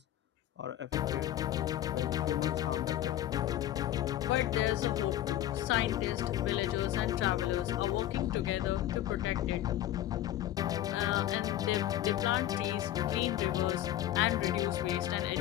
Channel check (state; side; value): quieter; right; 12.8 dB